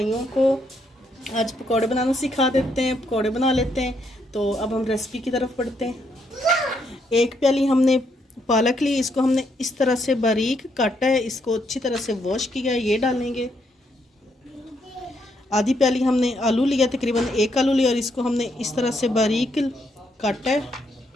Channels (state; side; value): normal; both; correlation 0.75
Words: को आज पकौड़े बनाना सिखा देते हैं, पकौड़े बना लेते हैं। तो अब हम रेसिपी की तरफ बढ़ते हैं। एक प्याली हमने पालक ली, इसको हमने इस तरह से बारीक काटा है, इसको अच्छी तरह से वॉश किया है, ये डालेंगे। आधी प्याली हमने आलू लिया, तकरीबन एक आलू लिया और इसको हमने इस तरह से बारीक काटा है,